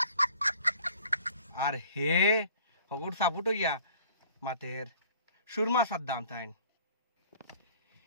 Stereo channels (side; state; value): both; inverted; correlation -0.52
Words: আর হে হগুর সাপুট হইয়া মাতের সুরমা সাদ্দাম তাইন